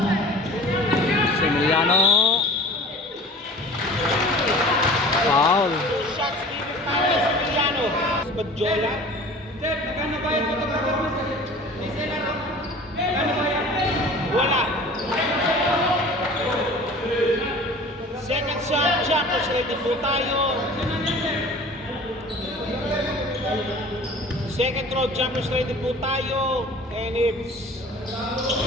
Emiliano. Foul. Shots given para kay Similiano. Badjola. Wala. Second shot. ready po tayo. Second row jumpers ready po tayo. And it's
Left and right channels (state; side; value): normal; both; correlation 0.43